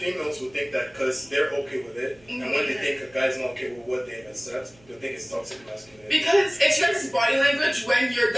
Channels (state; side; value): noise; right; hum, 28 dB below the sound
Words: would think that because they're okay with it, and when they think a guy's not okay with what they accept, they think it's toxic masculinity. Because it shows body language when you're